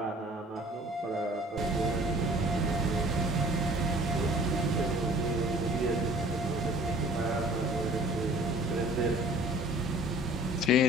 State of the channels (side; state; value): both; normal; correlation 0.51